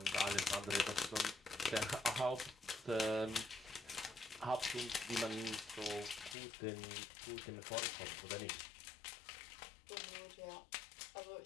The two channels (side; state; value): right; drops out; at 6.4 s